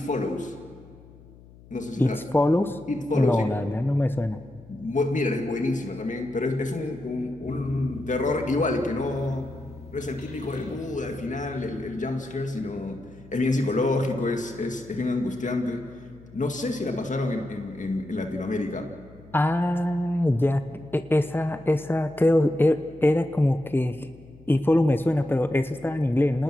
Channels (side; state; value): left; noise; hum, 22 dB below the sound